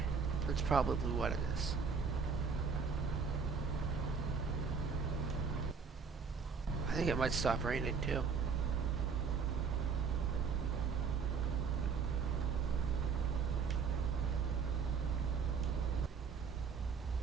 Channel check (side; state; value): left; quieter; 5.7 dB